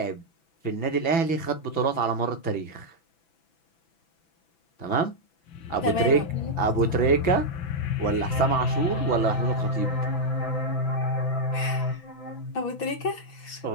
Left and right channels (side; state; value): right; late; 6.0 ms